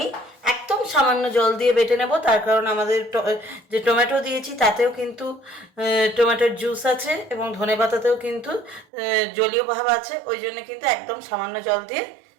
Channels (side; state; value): left; drops out; at 8.8 s